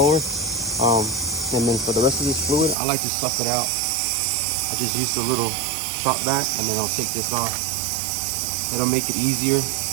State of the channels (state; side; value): drops out; left; at 2.8 s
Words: And then for the rest of this fluid, I like to suck it out. I just use a little shot back, and then I'll take this off. It'll make it easier